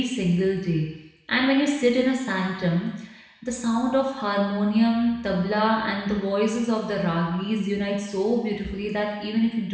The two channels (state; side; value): identical; both; correlation 1.00